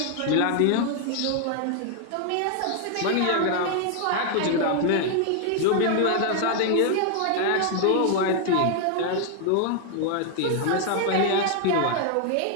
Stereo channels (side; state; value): both; different; correlation 0.00